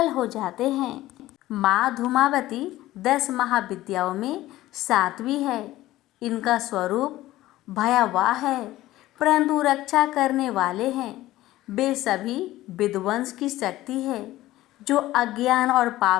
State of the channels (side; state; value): right; quieter; 16.0 dB